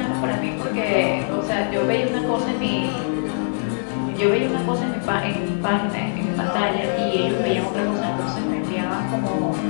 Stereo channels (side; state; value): right; silent; digital silence